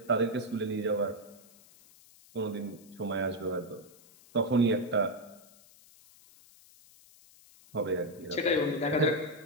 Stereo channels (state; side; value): noise; left; hiss, 25 dB below the sound